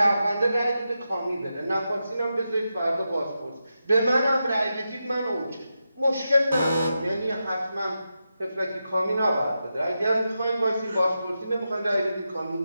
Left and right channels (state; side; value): inverted; both; correlation -0.88